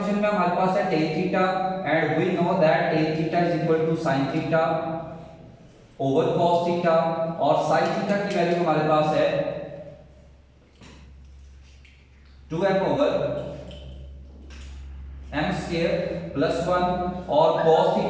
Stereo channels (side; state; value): both; identical; correlation 1.00